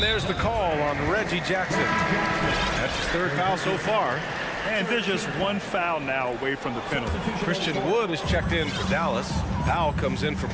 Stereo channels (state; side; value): identical; both; correlation 1.00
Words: there's the call on Reggie Jackson. That's his third foul so far. And there's just one foul now away from the penalty. Christian Wood is checked in for Dallas. Powell comes in for